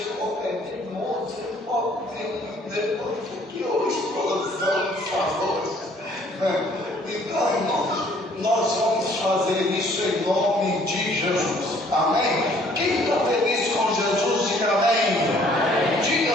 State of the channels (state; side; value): normal; both; correlation 0.59